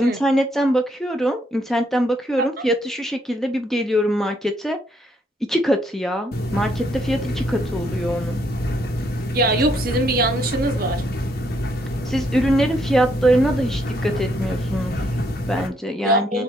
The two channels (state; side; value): normal; both; correlation 0.72